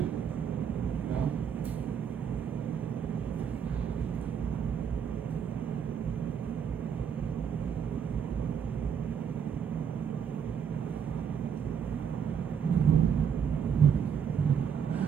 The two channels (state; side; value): quieter; left; 7.5 dB